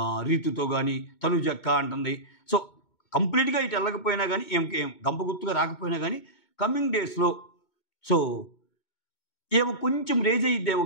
రీతుతో కానీ తనుజక్క అంటుంది. సో కంప్లీట్గా ఇటు వెళ్ళకపోయినా కానీ ఏం గంపగుత్తుగా రాకపోయినా కానీ కమింగ్ డేస్లో సో ఏమో కొంచెం రేజ్ అయ్యిద్దేమో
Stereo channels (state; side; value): late; right; 2.2 ms